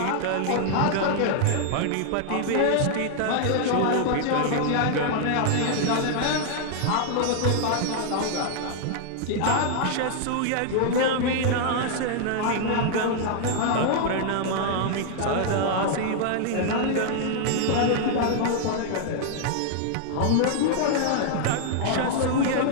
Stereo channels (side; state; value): both; different; correlation -0.01